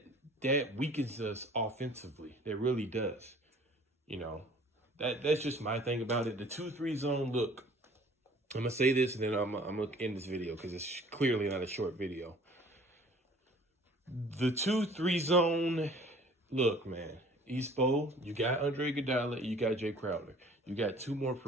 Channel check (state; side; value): normal; both; correlation 0.52